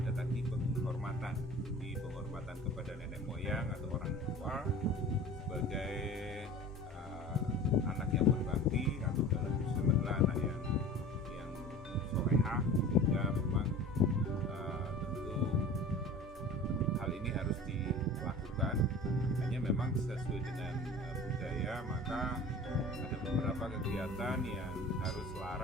tadi penghormatan, di penghormatan kepada nenek moyang atau orang tua sebagai anak yang berbakti, atau dalam Islam adalah anak yang solehah. Sehingga memang tentu hal ini harus dilakukan. Hanya memang sesuai dengan budaya, maka ada beberapa kegiatan yang harus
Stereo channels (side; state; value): both; normal; correlation 0.40